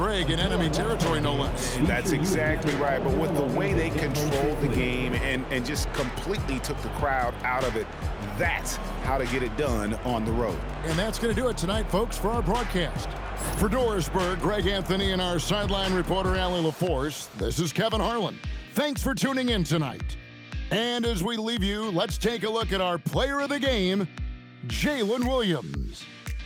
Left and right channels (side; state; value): both; identical; correlation 1.00